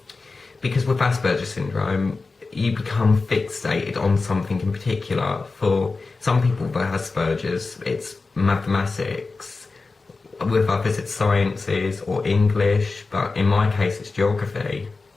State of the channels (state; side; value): quieter; right; 3.9 dB